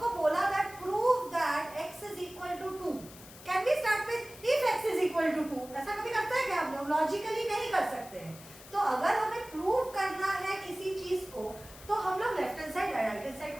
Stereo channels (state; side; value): noise; left; hiss, 18 dB below the sound